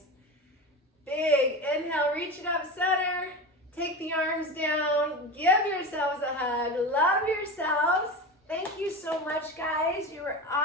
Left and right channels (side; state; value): both; normal; correlation 0.26